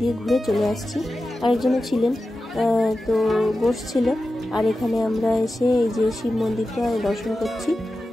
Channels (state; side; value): normal; both; correlation 0.93